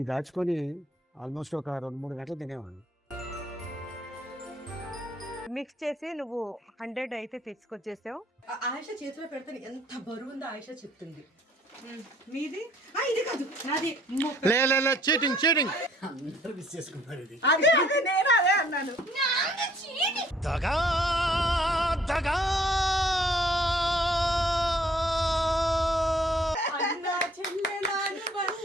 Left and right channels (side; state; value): both; normal; correlation 0.60